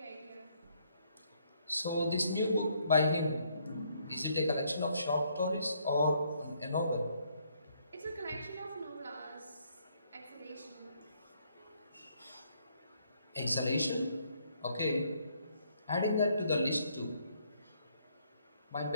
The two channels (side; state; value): both; inverted; correlation -0.70